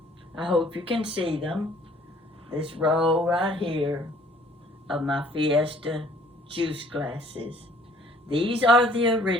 I hope you can see them. This row right here of my Fiesta juice glasses. These are the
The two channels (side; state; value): both; normal; correlation 0.57